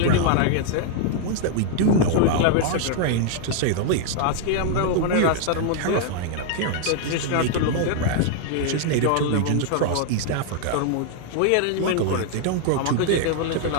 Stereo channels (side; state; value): both; different; correlation 0.00